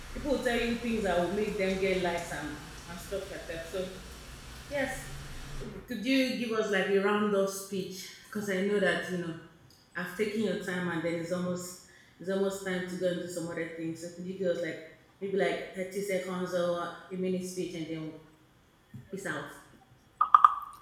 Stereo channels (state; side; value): identical; both; correlation 1.00